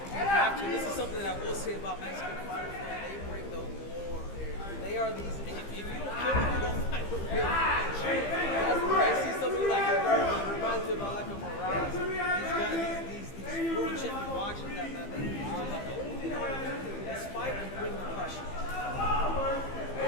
Actually, this is something that I will say about Mexican fighters. They bring the war. They are these. If you don't kill them, you don't fight with them. That's where I see somebody like Rivera. It reminds me of like a Morales. These guys, these world champion boxers that they only know how to do is fight and bring the pressure.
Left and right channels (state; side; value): late; right; 15 ms